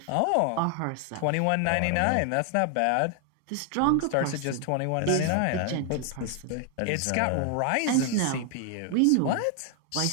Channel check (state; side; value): different; both; correlation 0.00